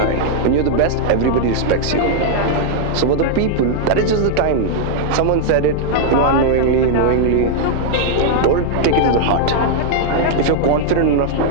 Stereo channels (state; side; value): different; both; correlation -0.01